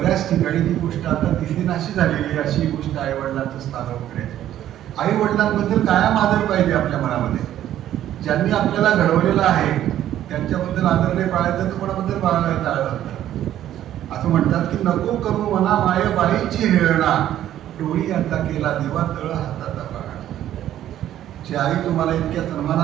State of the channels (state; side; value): quieter; left; 12.0 dB